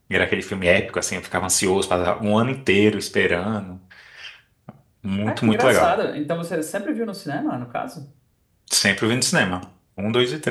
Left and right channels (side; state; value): both; identical; correlation 1.00